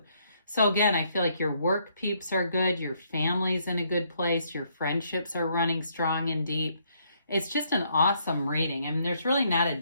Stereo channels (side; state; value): both; inverted; correlation -0.71